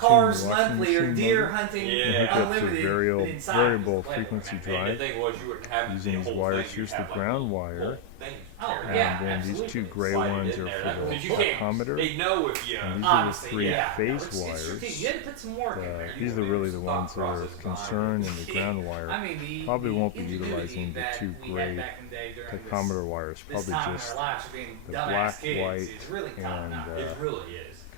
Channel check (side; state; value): both; different; correlation 0.00